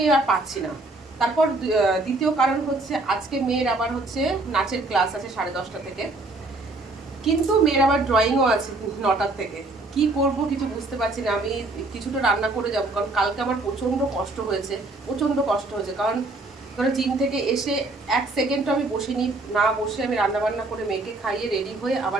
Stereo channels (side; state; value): left; quieter; 3.0 dB